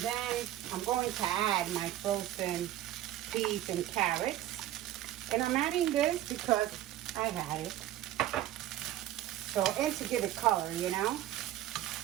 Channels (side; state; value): left; quieter; 13.5 dB